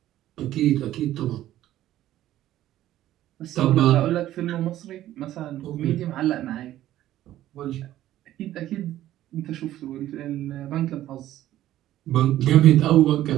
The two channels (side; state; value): left; quieter; 13.5 dB